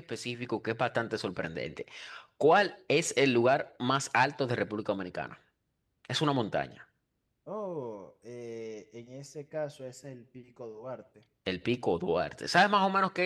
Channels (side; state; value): both; identical; correlation 1.00